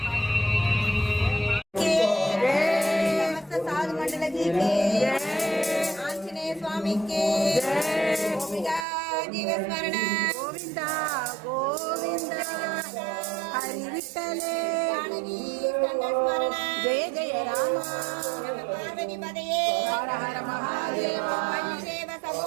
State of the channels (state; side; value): drops out; left; at 8.8 s